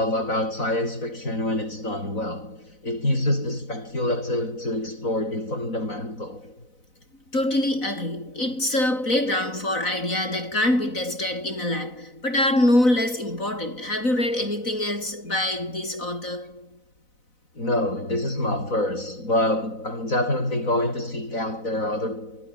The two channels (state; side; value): late; right; 4.0 ms